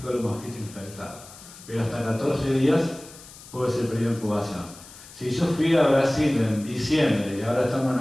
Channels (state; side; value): noise; left; hiss, 19 dB below the sound